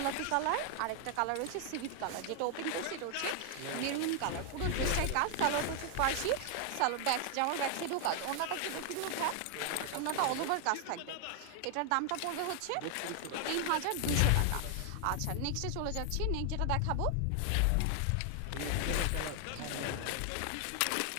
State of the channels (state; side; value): different; both; correlation 0.00